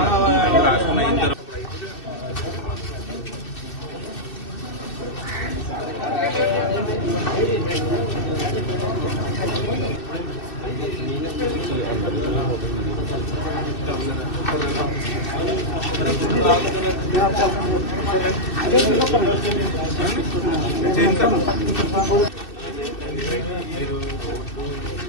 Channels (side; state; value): right; late; 2.6 ms